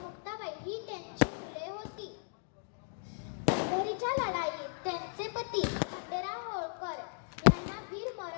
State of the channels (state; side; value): silent; right; digital silence